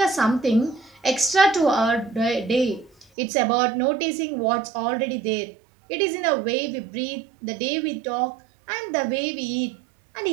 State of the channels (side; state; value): left; drops out; at 3.1 s